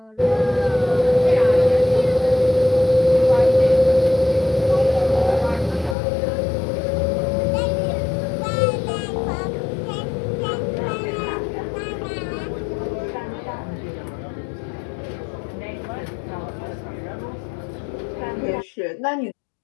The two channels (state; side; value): drops out; right; at 6.0 s